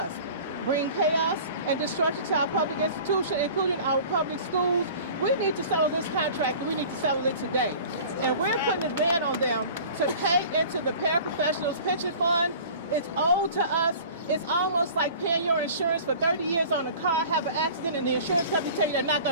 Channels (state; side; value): inverted; both; correlation -0.43